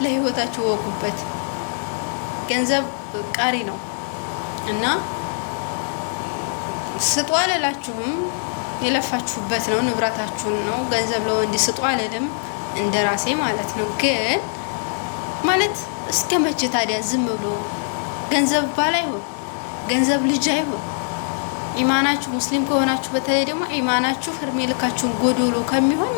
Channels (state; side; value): silent; right; 62 dB below the other